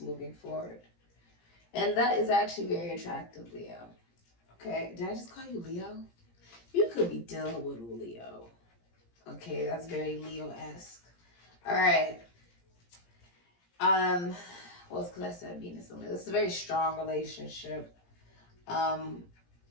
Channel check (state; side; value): late; right; 17 ms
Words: forward. And that is actually very attractive, Leo. Okay, did I just call you Leo? You could be dealing with Leo. Okay, that's very Leo-esque. All right. Well, it's because I said Venus and Leo. This is a very strong relationship. And